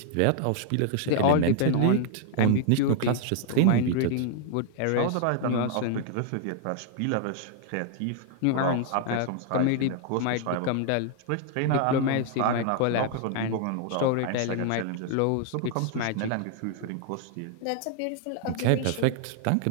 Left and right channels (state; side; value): different; both; correlation 0.00